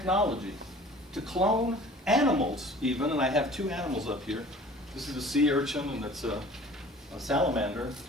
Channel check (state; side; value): normal; both; correlation 0.46